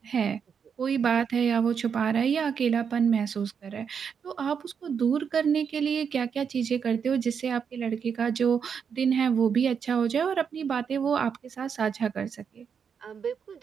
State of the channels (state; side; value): quieter; left; 6.9 dB